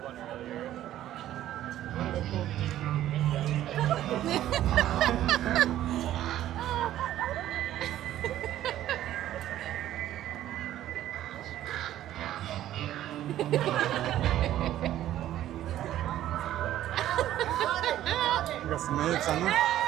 We've got some moves on them.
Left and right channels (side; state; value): left; quieter; 12.9 dB